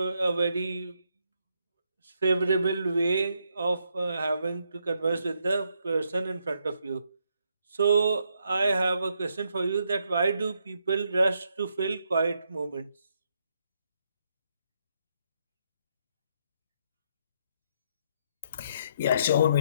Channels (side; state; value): both; inverted; correlation -0.76